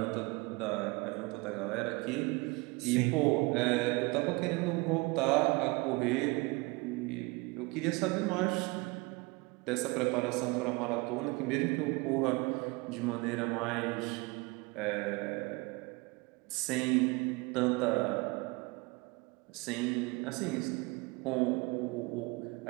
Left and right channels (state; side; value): quieter; left; 25.9 dB